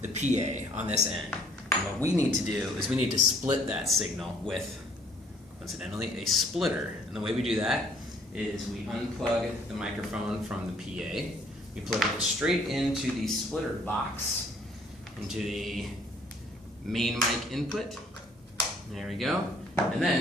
the PA on this end. And what we need to do is we need to split that signal with, incidentally, a splitter. And the way we do that is we unplug the microphone from the PA, we plug it straight into the splitter box, into the main mic input. There we go. And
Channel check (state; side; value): normal; both; correlation 0.61